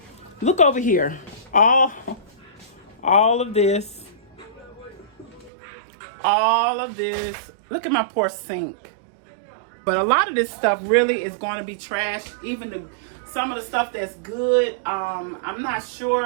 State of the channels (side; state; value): left; drops out; at 5.5 s